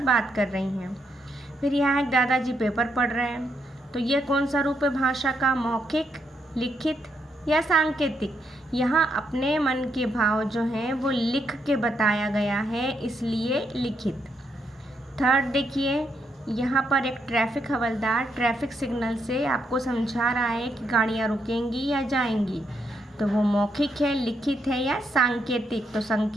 बात कर रही हैं। फिर यहाँ एक दादाजी पेपर पढ़ रहे हैं, तो ये कौन सा रूप है भाषा का? मौखिक, लिखित या सांकेतिक? यहाँ अपने मन के भाव जो हैं वो लिख के बताया गया है इसलिए लिखित। थर्ड देखिए, यहाँ पर एक ट्रैफिक हवलदार ट्रैफिक सिग्नल से आपको समझा रहा है कि गाड़ियाँ रुकेंगी या जाएंगी, तो वो मौखिक है, लिखित है या सांकेतिक? तो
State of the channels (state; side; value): normal; both; correlation 0.78